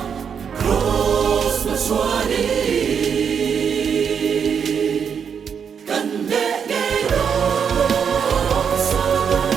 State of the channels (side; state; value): left; quieter; 7.1 dB